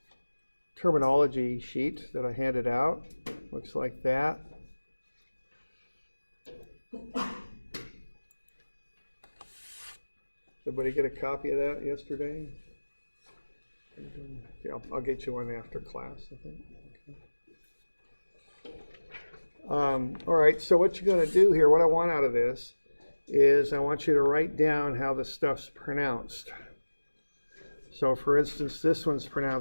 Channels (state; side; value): inverted; both; correlation -1.00